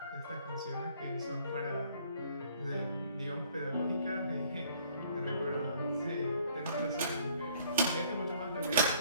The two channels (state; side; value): inverted; both; correlation -0.60